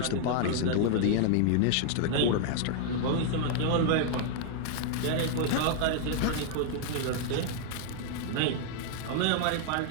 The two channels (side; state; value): both; different; correlation 0.00